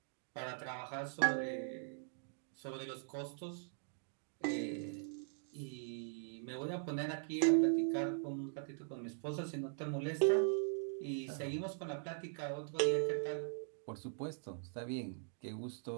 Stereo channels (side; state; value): left; silent; digital silence